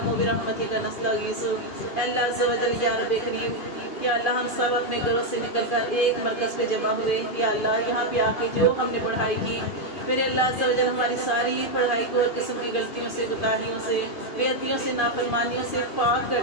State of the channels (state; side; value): late; right; 2.8 ms